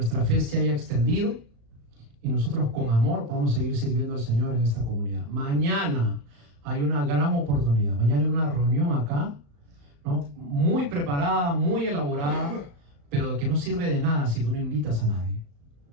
fe se haya extendido y nosotros con amor podamos seguir sirviendo al Señor en esta comunidad. Mañana hay una gran oportunidad. Mañana hay una reunión acá, ¿no? Muy preparada, muy elaborada, pero de que no sirve de nada si tú no invitas a nadie.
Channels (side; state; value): left; late; 35 ms